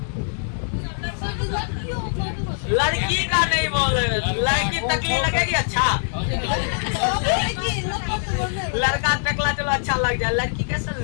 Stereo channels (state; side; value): silent; right; 64 dB below the other